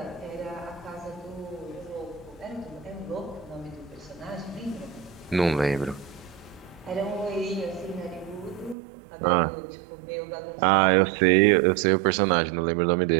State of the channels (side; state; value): left; drops out; at 8.8 s